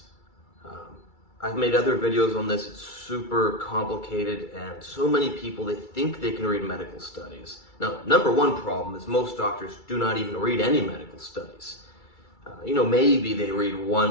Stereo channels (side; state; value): right; late; 2.3 ms